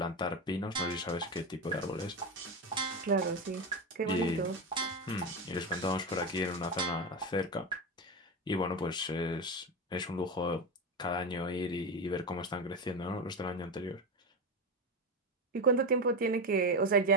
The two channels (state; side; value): normal; both; correlation 0.16